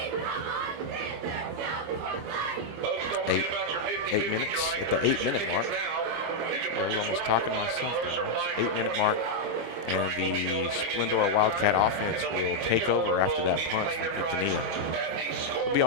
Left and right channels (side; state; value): left; late; 25 ms